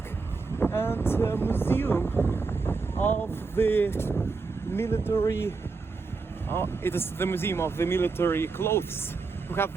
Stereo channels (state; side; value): quieter; left; 4.4 dB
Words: and museum of the military. It is the museum of the military clothes. We have